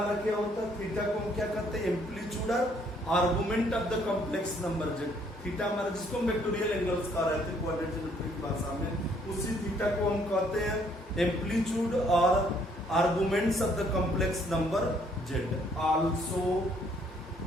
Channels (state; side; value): normal; both; correlation 0.65